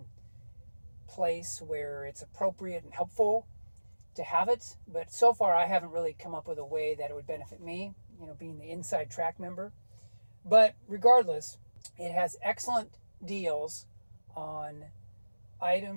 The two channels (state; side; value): inverted; both; correlation -1.00